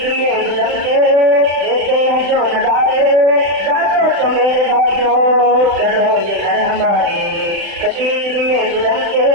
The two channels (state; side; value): late; left; 35 ms